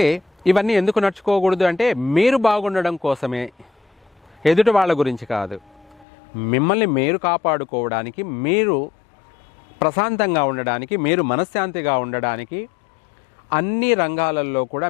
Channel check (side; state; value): right; drops out; at 6.1 s